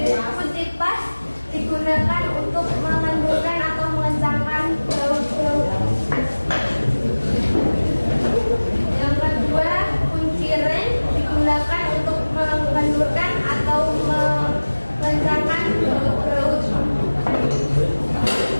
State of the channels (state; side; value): inverted; both; correlation -1.00